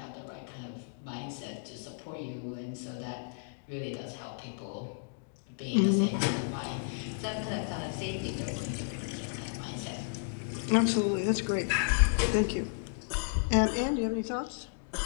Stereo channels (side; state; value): right; silent; digital silence